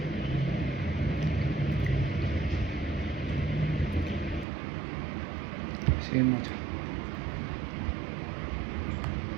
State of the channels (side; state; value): left; drops out; at 4.5 s